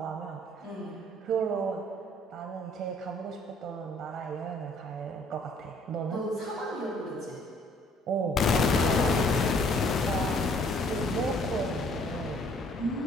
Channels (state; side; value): normal; both; correlation 0.60